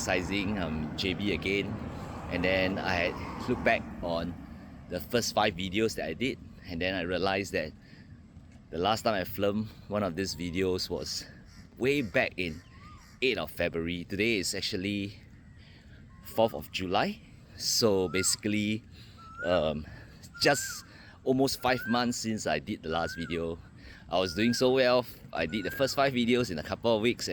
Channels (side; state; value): both; identical; correlation 1.00